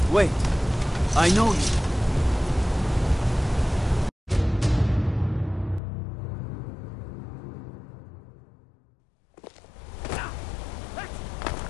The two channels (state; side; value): drops out; right; at 5.8 s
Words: Wait, I know you.